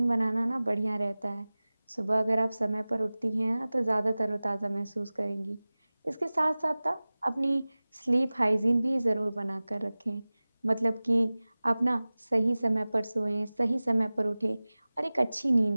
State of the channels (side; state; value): both; inverted; correlation -0.99